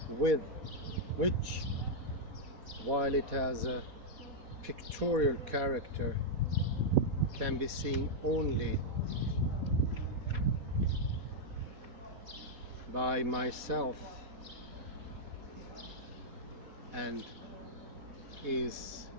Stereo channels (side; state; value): left; late; 4.2 ms